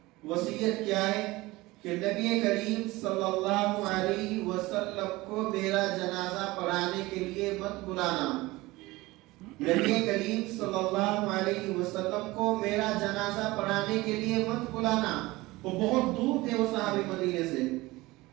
وصیت کیا ہے کہ نبی کریم صلی اللہ علیہ وسلم کو میرا جنازہ پڑھانے کے لیے مت بلانا، نبی کریم صلی اللہ علیہ وسلم کو میرا جنازہ پڑھانے کے لیے مت بلانا۔ وہ بہت دور تھے وہ صحابی مدینے سے۔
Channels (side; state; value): left; quieter; 20.3 dB